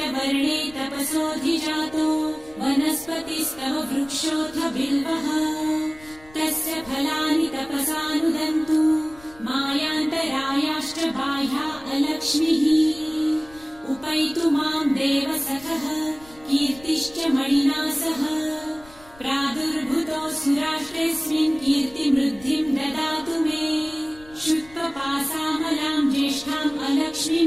तपसोऽधिजातो वनस्पतिस्तव वृक्षोऽथ बिल्वः तस्य फलानि तपसानुदन्तु मायान्तरायाश्च बाह्या अलक्ष्मीः उपैतु मां देवसखः कीर्तिश्च मणिना सह प्रादुर्भूतो सुराष्ट्रेऽस्मिन् कीर्तिमृद्धिं ददातु मे शुत्वपासामलां ज्येष्ठाम् अलक्ष्मीं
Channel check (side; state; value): left; noise; rumble, 24 dB below the sound